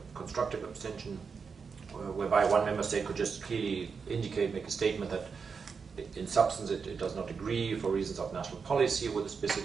constructive abstention, whereby one member state could just clearly indicate, make a statement that in substance it does not agree for reasons of national policy with a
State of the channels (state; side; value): quieter; left; 5.6 dB